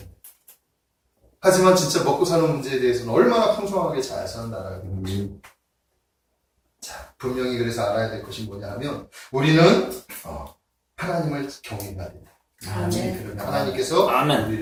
하지만 진짜 먹고 사는 문제에 대해서는 얼마나 풍성하게 잘 사는 나라가 됩니다. 자, 분명히 그래서 알아야 될 것이 뭐냐 하면 우리는 하나님을 경외해야 된다. 그러면 하나님께서 아멘.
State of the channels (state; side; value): identical; both; correlation 1.00